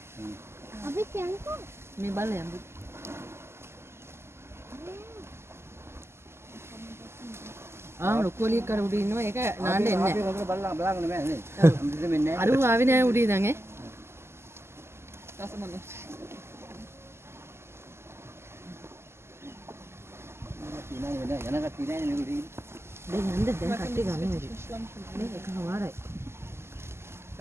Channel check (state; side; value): late; left; 0.12 ms